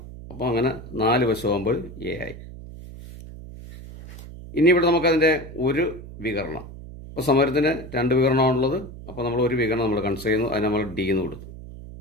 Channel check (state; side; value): noise; right; hum, 14 dB below the sound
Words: അപ്പോൾ അങ്ങനെ 4 വശമാകുമ്പോൾ A ആയി. ഇനി ഇവിടെ നമുക്കതിൻ്റെ ഒരു വികരണം, അപ്പോൾ സമരത്തിന് 2 വികരണമാണുള്ളത്. അപ്പോൾ നമ്മൾ ഒരു വികരണം നമ്മൾ കൺസിഡർ ചെയ്യുന്നു, അതിന് നമ്മൾ D എന്ന് കൊടുത്തു.